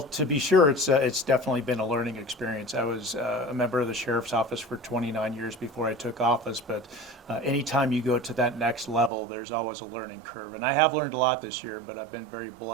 to be sure, it's definitely been a learning experience. I was a member of the Sheriff's Office for 29 years before I took office, but anytime you go to that next level, there's always a learning curve. And I have learned a lot this year, but I've been very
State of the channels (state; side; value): drops out; left; at 9.1 s